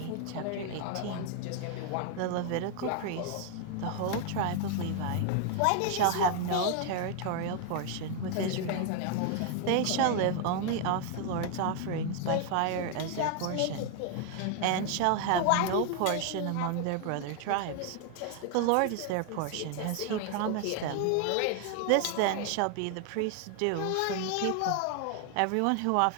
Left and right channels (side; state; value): both; different; correlation 0.00